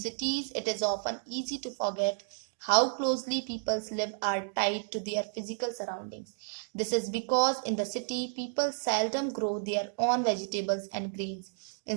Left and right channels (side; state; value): left; silent; digital silence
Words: it is often easy to forget How closely people's live are tied to their physical surroundings. This is because in the city, people seldom grow their own vegetables and grains.